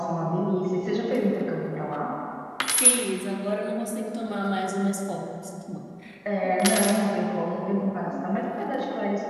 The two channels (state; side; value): identical; both; correlation 1.00